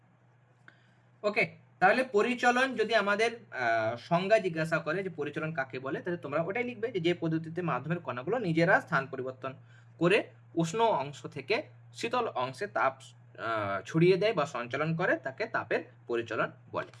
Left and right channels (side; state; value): both; identical; correlation 1.00